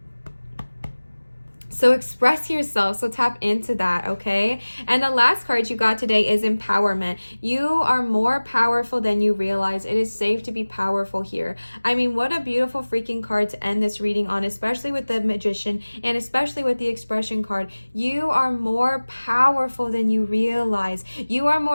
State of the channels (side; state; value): both; inverted; correlation -1.00